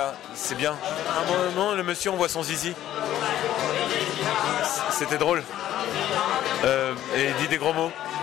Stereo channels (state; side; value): quieter; right; 12.5 dB